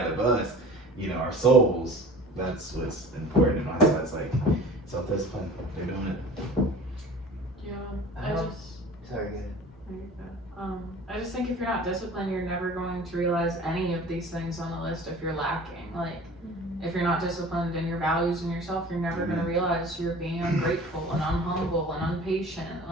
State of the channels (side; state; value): both; normal; correlation 0.42